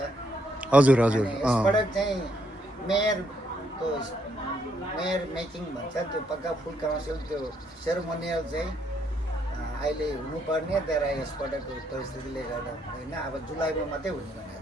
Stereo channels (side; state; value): both; normal; correlation 0.73